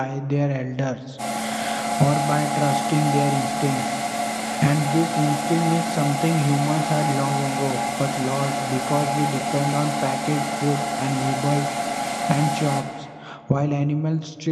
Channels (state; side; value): identical; both; correlation 1.00